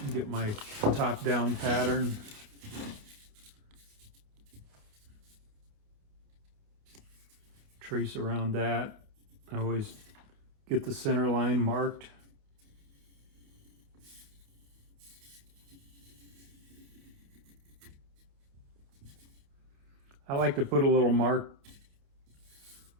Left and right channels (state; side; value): late; left; 28 ms